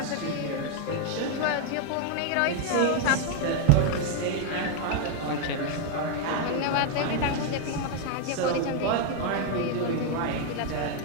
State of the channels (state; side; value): different; both; correlation 0.00